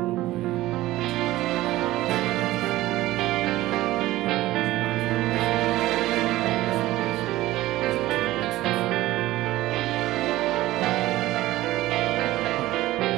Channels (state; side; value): quieter; left; 16.7 dB